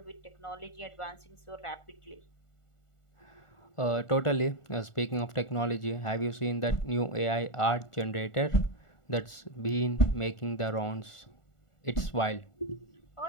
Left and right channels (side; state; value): right; late; 1.4 ms